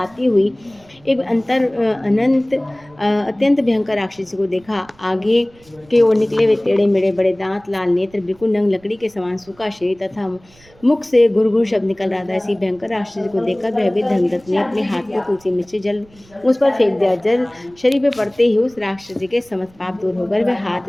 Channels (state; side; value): noise; right; rumble, 28 dB below the sound